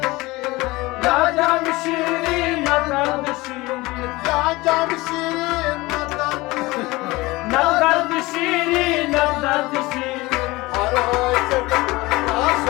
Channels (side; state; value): right; quieter; 21.1 dB